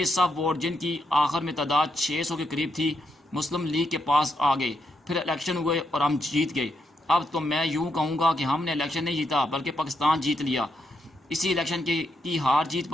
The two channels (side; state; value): both; normal; correlation 0.81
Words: سب ووٹ، جن کی آخر میں تعداد 600 کے قریب تھی، مسلم لیگ کے پاس آ گئے۔ پھر الیکشن ہوئے اور ہم جیت گئے۔ اب تو میں یوں کہوں گا کہ ہم نے الیکشن نہیں جیتا بلکہ پاکستان جیت لیا۔ اسی الیکشن کی ہار جیت